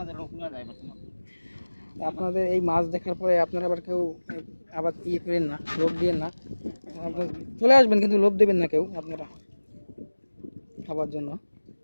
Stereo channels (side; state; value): both; inverted; correlation -1.00